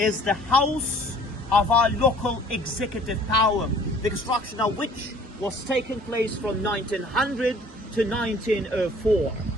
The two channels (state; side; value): normal; both; correlation 0.53